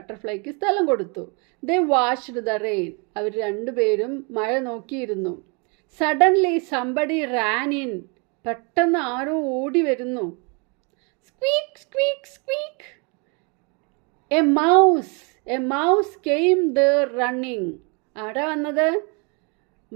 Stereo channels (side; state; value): left; quieter; 33.3 dB